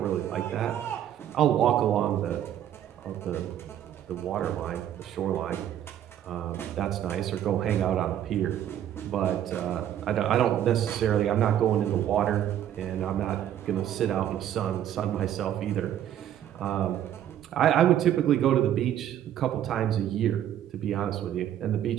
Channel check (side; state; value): left; quieter; 10.9 dB